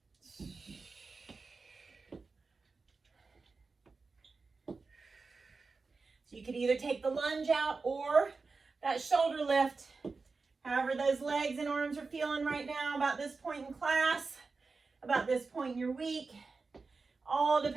So you could either take the lunge out or that shoulder lift. However those legs and arms are feeling right now about this point in class, about this point in your week. All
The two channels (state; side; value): quieter; left; 4.2 dB